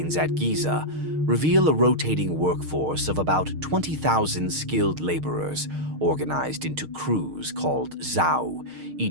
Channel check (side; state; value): left; late; 6.5 ms